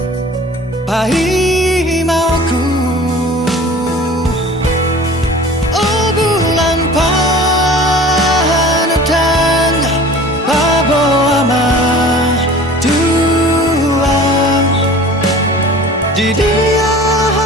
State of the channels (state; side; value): normal; both; correlation 0.43